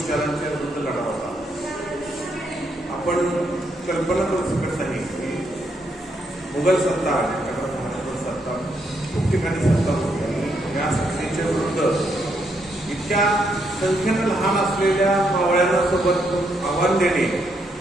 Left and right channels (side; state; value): both; normal; correlation 0.77